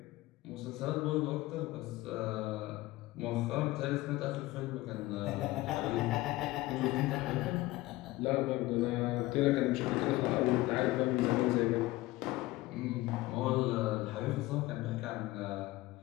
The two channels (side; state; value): right; quieter; 18.8 dB